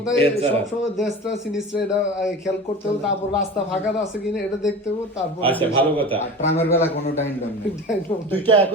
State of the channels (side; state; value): both; normal; correlation 0.34